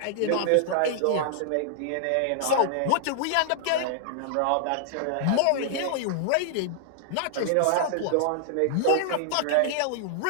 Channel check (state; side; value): different; both; correlation -0.01